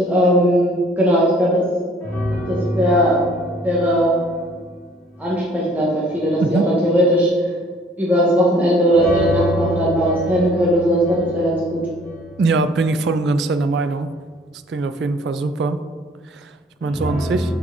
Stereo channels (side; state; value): both; normal; correlation 0.56